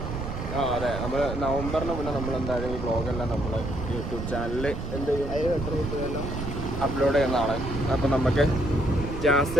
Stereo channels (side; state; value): right; noise; rumble, 5 dB below the sound